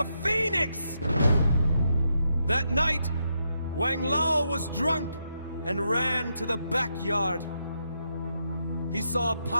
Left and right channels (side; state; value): both; inverted; correlation -0.81